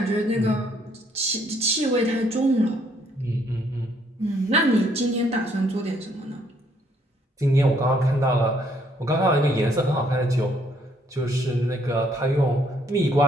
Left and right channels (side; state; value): both; normal; correlation 0.67